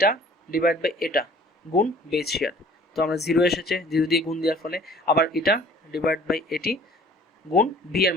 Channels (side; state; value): both; normal; correlation 0.52